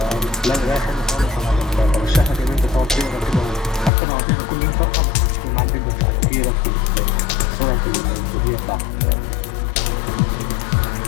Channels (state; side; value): drops out; right; at 3.9 s